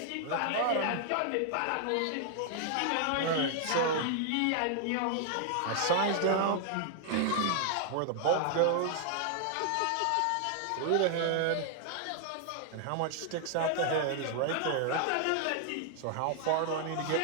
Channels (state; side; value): different; both; correlation 0.00